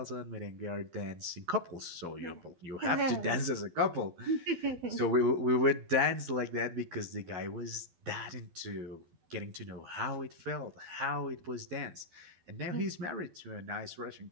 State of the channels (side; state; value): left; late; 12 ms